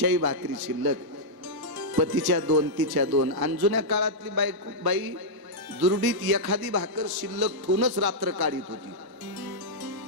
भाकरी शिल्लक पतीच्या 2 तिच्या 2 आणि जुन्या काळातली बाई दुरडीत एखादी भाकर शिल्लक ठेवूनच रात्र काढीत होती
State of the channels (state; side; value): late; left; 1.1 ms